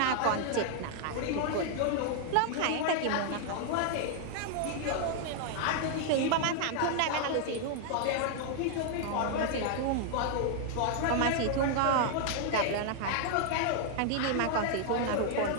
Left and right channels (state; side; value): different; both; correlation 0.00